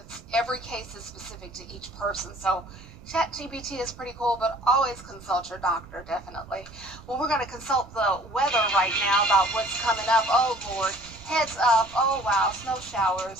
every case is specific to each person. So ChatGPT is pretty cool, but always consult your doctor, definitely. Well, we're going to consult the weather right now about what's coming up. Oh, Lord. Heads up. Oh, wow. Snow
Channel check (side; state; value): right; noise; rumble, 20 dB below the sound